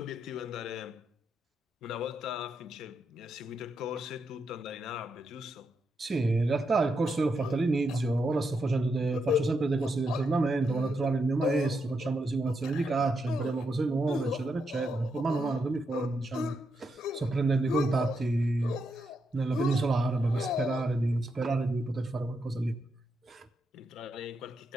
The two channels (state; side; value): normal; both; correlation 0.82